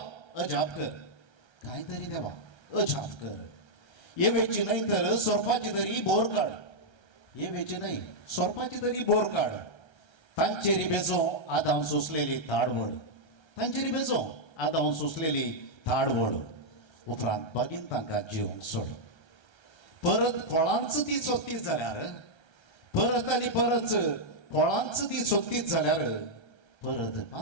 अजाप कर. कांय तरी देवा अजाप कर. येवेची न्हय तर सोरपाची तरी बोर काड. येवेची न्हय सोरपाची तरी बोर काड. तांचेरी बेजो आदां सोंसलेली थाडवड. तांचेरी बेजो आदां सोंसलेली थाडवड. उपरांत बागीन तांकां जिवंक सोड. परत फळांच ती सोदतीच जाल्यार परत आनी परत फळांच ती सोदतीच जाल्यार परत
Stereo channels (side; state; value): right; late; 1.3 ms